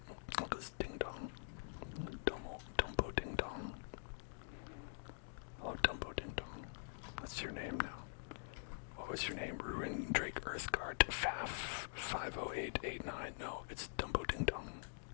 Look at this ding dong. Dumbo ding dong. Hello, Dumbo ding dong. What's your name now? What was your name? Ruin Drake Earthguard Faf 50889. No, it's Dumbo ding dong.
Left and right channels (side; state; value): right; silent; digital silence